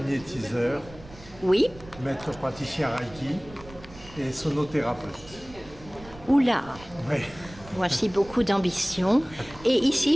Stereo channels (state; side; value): noise; right; rumble, 19 dB below the sound